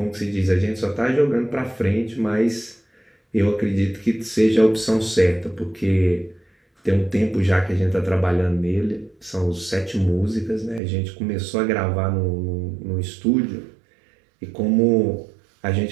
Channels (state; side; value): drops out; left; at 10.8 s